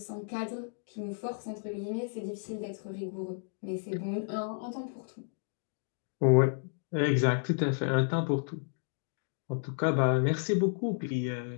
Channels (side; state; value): right; silent; digital silence